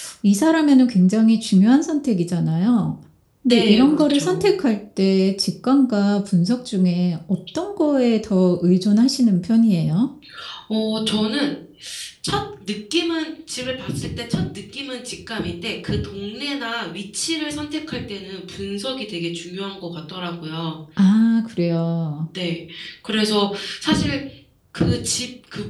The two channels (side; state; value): both; identical; correlation 1.00